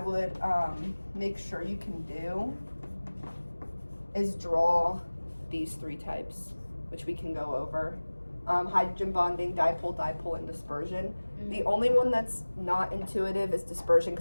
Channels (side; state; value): both; inverted; correlation -1.00